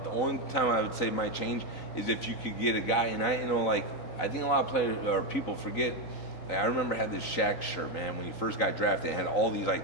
The only time I would say might change is if you could get a guy, and I think a lot of players or people forget. Like, I remember I had this Shaq shirt, man, when he first got drafted. It had all these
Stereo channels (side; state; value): right; late; 3.9 ms